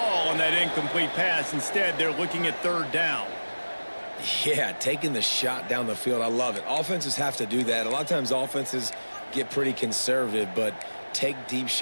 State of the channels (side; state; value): both; inverted; correlation -1.00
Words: on that incomplete pass. Instead, they're looking at third down. Yeah, taking the shot down the field. I love it. Offenses have to do that. A lot of times offenses get pretty conservative, but take deep